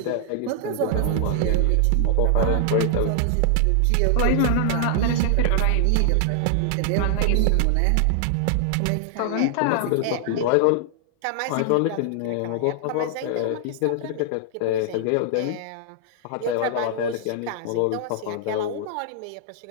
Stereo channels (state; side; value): different; both; correlation 0.00